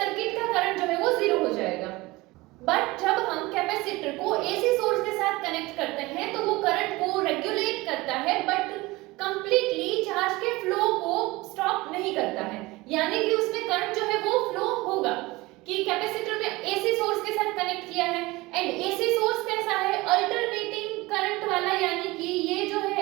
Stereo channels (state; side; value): quieter; left; 21.3 dB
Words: का करंट जो है वो जीरो हो जाएगा. बट जब हम कैपेसिटर को एसी सोर्स के साथ कनेक्ट करते हैं तो वो करंट को रेगुलेट करता है बट कंप्लीटली चार्ज के फ्लो को स्टॉप नहीं करता है. यानी कि उसमें करंट जो है वो फ्लो होगा कि कैपेसिटर में एसी सोर्स के साथ कनेक्ट किया है एंड एसी सोर्स कैसा है, अल्टरनेटिंग करंट वाला, यानी कि ये जो